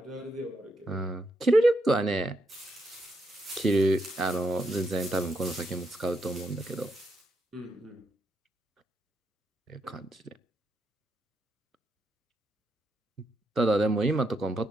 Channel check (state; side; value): normal; both; correlation 0.81